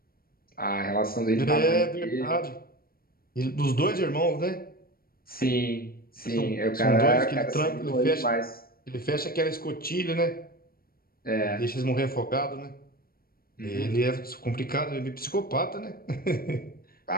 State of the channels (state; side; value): late; right; 0.43 ms